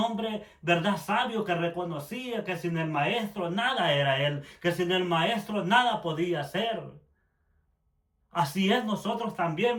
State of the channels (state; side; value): identical; both; correlation 1.00